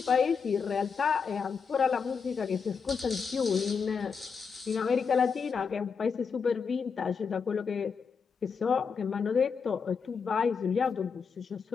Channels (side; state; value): right; quieter; 5.8 dB